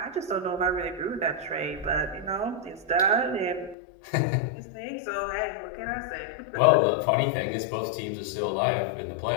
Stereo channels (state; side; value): drops out; right; at 3.8 s